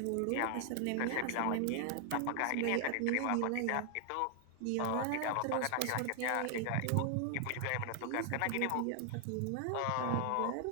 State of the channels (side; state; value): both; different; correlation 0.00